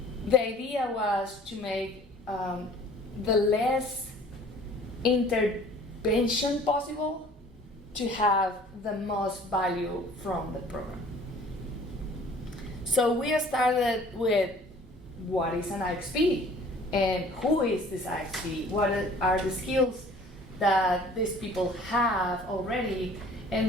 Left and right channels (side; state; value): both; normal; correlation 0.51